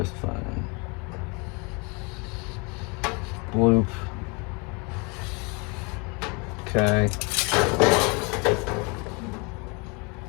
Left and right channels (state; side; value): quieter; right; 30.9 dB